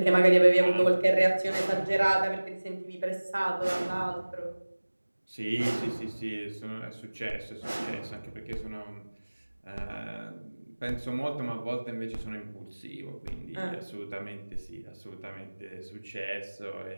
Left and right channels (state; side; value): inverted; both; correlation -1.00